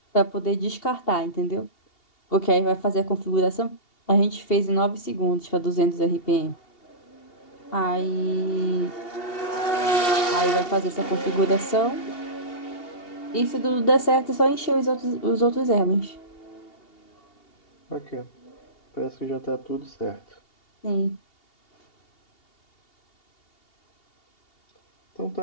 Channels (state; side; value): late; right; 2.8 ms